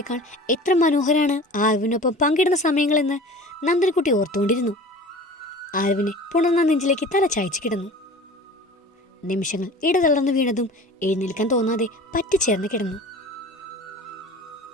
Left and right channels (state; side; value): normal; both; correlation 0.40